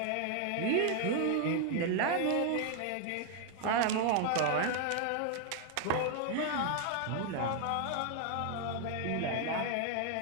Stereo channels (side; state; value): both; different; correlation 0.00